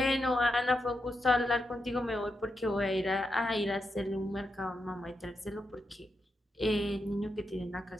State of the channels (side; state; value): both; normal; correlation 0.85